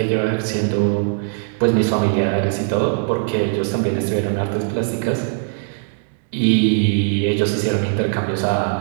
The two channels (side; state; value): left; silent; digital silence